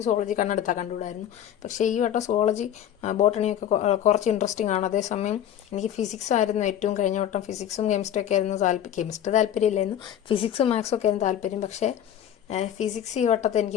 സുവോളജി കണ്ടുകൂടായിരുന്നു, പക്ഷേ ഈ വട്ടം സുവോളജി ബോട്ടണിയൊക്കെ കുറച്ച് ഇൻട്രസ്റ്റിംഗ് ആണ്. അതേസമയം എനിക്ക് ഫിസിക്സ് ആയിരുന്നു ഏറ്റവും, കഴിഞ്ഞ വട്ടം ഫിസിക്സും കെമിസ്ട്രി ഒക്കെ ആയിരുന്നു കെമിസ്ട്രി താല്പര്യമില്ലായിരുന്നു, ഫിസിക്സും മാത്സും ഒക്കെ ആയിരുന്നു താല്പര്യം. പക്ഷേ ഫിസിക്സ് ഈ വട്ടത്തെ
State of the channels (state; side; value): quieter; right; 10.3 dB